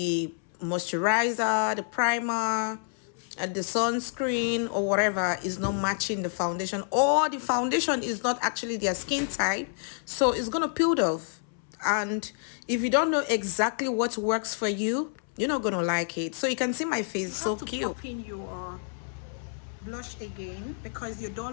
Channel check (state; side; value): silent; right; 59 dB below the other